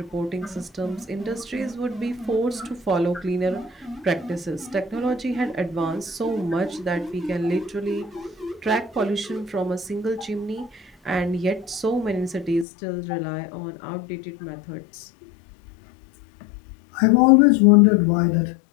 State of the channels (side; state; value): right; drops out; at 12.7 s